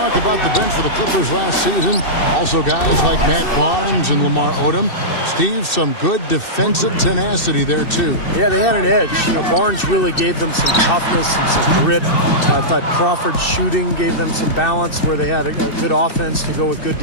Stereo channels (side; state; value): right; late; 2.6 ms